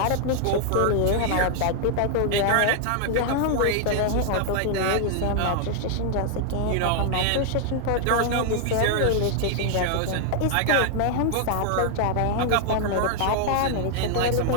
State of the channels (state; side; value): different; both; correlation 0.00